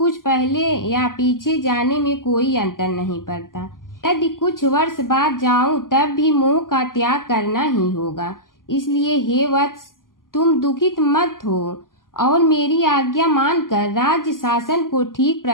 पहले या पीछे जाने में कोई अंतर नहीं पड़ता। यदि कुछ वर्ष बाद जाऊं तब भी मोह का त्याग करना ही होगा। इसलिए हे वत्स, तुम दुखित मत हो और मेरी आज्ञा मानकर राज्य शासन को ठीक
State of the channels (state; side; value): late; right; 0.91 ms